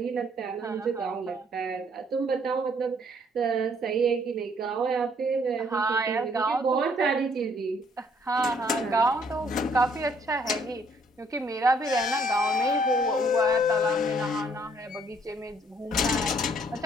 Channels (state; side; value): normal; both; correlation 0.65